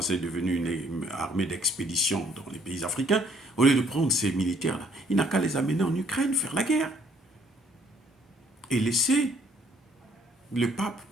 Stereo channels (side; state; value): both; normal; correlation 0.64